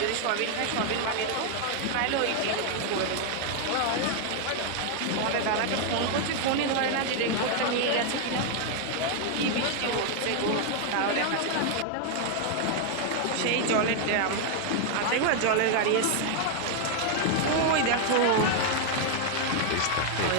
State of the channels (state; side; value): different; both; correlation 0.00